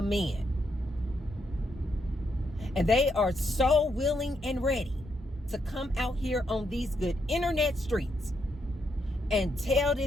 men. And they are so willing and ready to come out here on these good internet streets and tell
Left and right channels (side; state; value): both; normal; correlation 0.78